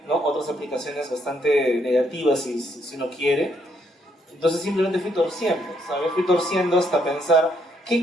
¿no?, otras aplicaciones bastante negativas si uno quiere. Entonces simplemente fui torciendo, ¿sabes? Fui torciendo hasta pensar,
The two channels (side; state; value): both; normal; correlation 0.73